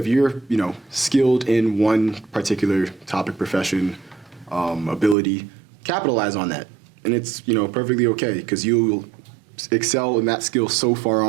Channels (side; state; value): left; drops out; at 5.2 s